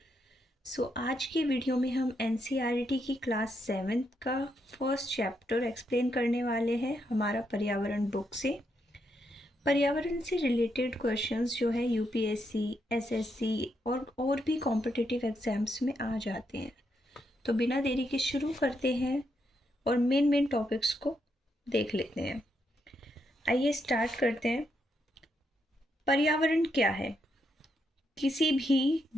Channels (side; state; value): both; normal; correlation 0.80